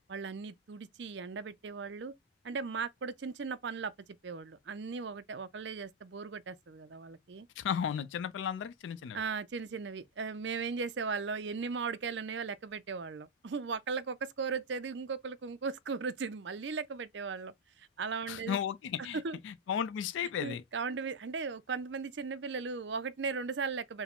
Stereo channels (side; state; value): both; normal; correlation 0.00